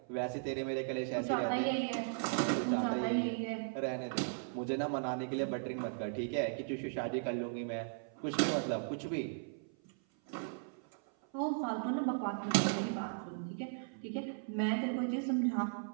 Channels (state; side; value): silent; left; 53 dB below the other